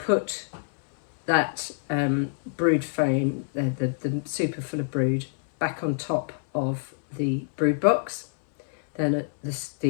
that brood frame, the super full of brood, back on top of the brood box. Then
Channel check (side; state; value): right; silent; 59 dB below the other